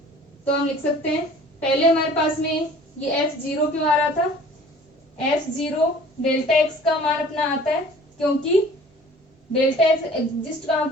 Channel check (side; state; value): both; normal; correlation 0.49